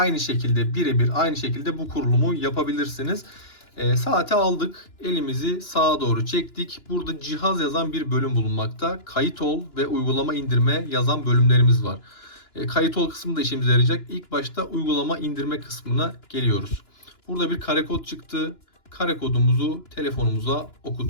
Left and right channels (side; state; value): right; late; 2.9 ms